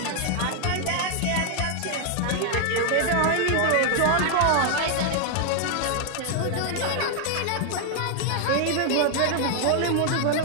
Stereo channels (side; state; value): both; different; correlation 0.00